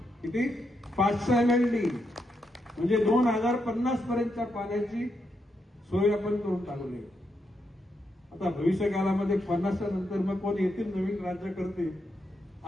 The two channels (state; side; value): normal; both; correlation 0.82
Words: किती? 500 MLD. म्हणजे 2050 पर्यंतच्या पाण्याची सोय आपण करून टाकली. आता भविष्य काळामध्ये 50च्या नंतर मग कोण येतील नवीन राज्य करते,